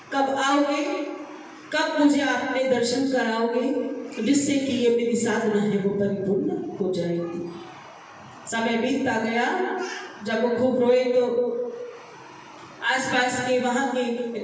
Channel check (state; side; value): identical; both; correlation 1.00